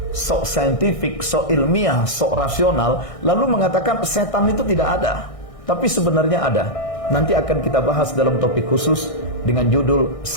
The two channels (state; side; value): late; right; 1.6 ms